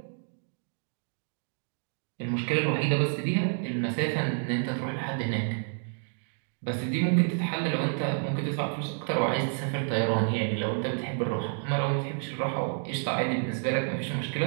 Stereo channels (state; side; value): silent; left; 58 dB below the other